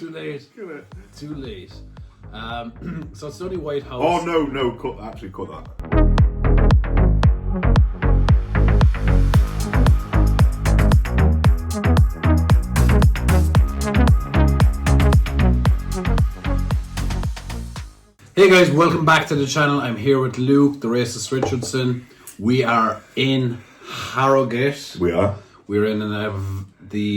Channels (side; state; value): both; identical; correlation 1.00